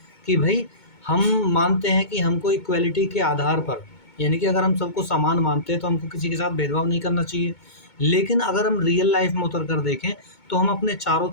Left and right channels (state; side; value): late; right; 2.2 ms